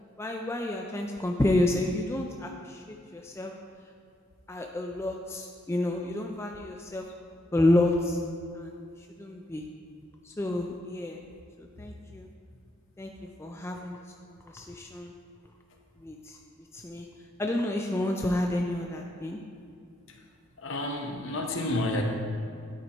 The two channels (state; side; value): normal; both; correlation 0.77